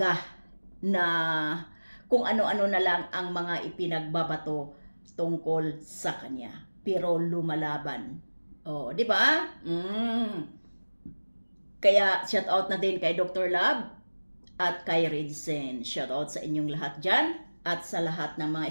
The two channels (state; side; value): inverted; both; correlation -1.00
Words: na kung ano-ano na lang ang mga ipinagbabato tungkol sa kanya. Pero lumalaban. Oh, di ba? Kaya shout out na din kay Dr. Love at kay Redsen. Shout out sa inyong lahat dyan at sa lahat ng mga